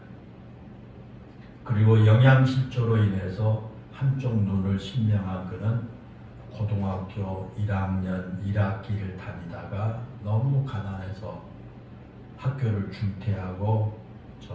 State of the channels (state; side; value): identical; both; correlation 1.00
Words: 그리고 영양실조로 인해서 한쪽 눈을 실명한 그는 고등학교 1학년 1학기를 다니다가 너무 가난해서 학교를 중퇴하고